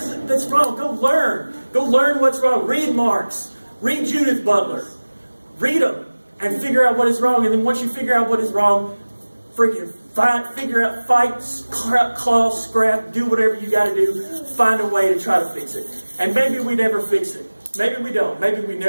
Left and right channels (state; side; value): inverted; both; correlation -1.00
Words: that's wrong. Go learn. Go learn what's wrong. Read Marx. Read Judith Butler. Read them and figure out what is wrong. And then once you figure out what is wrong, freaking figure out, fight, claw, scrap, do whatever you got to do. Find a way to try to fix it. And maybe we never fix it. Maybe we don't. Maybe we